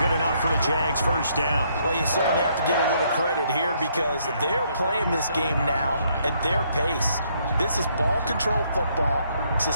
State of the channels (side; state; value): both; inverted; correlation -0.70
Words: enough for the Jags' first down. Well, you certainly have to give a little credit here because they're playing this game now at their pace. This is ball control football,